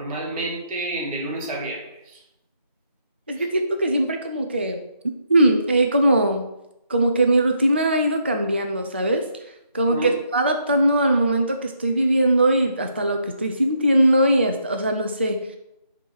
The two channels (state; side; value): inverted; both; correlation -0.75